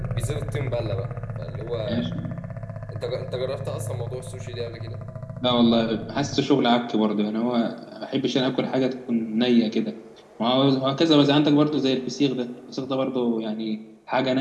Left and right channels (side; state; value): both; identical; correlation 1.00